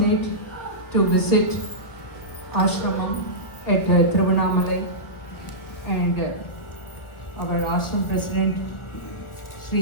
to visit ashramam at Tiruvannamalai, and our ashram president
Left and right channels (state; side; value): late; right; 1.7 ms